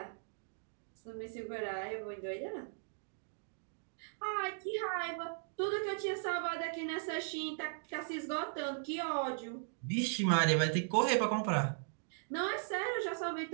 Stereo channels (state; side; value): silent; left; digital silence